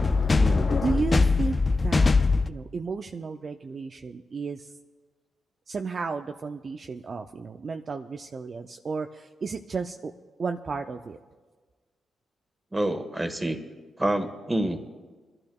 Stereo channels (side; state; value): both; normal; correlation 0.91